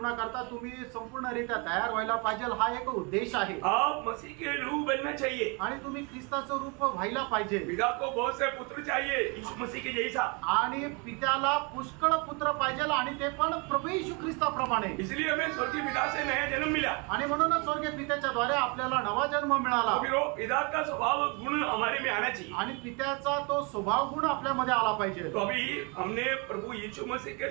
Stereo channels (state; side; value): quieter; left; 31.2 dB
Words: तुम्ही संपूर्णरित्या तयार व्हायला पाहिजे, हा एक उद्देश आहे। आप मसीह के रूप बनना चाहिए, आणि तुम्ही ख्रिस्ताचं रूप व्हायला पाहिजे। पिता को बहुत से पुत्र चाहिए यीशु मसीह के जैसा, आणि पित्याला पुष्कळ पुत्र पाहिजे, आणि ते पण प्रभू येशू ख्रिस्ताप्रमाणे। इसलिए हमें स्वर्गीय पिता से नया जन्म मिला, आणि म्हणूनच स्वर्गीय पित्याच्या द्वारे आपल्याला नवा जन्म मिळाला। फिर वो पिता का स्वभाव गुण हमारे में आना चाहिए, आणि पित्याचा तो स्वभाव गुण आपल्यामध्ये आला पाहिजे। तो अभी हमने प्रभु यीशु मसीह के